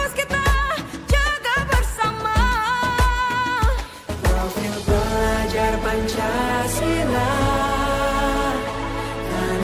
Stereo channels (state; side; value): identical; both; correlation 1.00